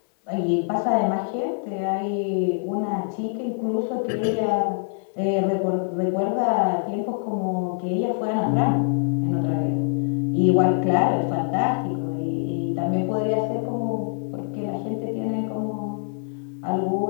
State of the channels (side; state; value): right; silent; 62 dB below the other